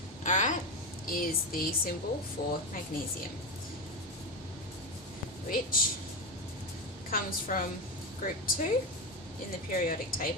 alright, is the symbol for magnesium, which comes from group 2 in the periodic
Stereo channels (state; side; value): normal; both; correlation 0.15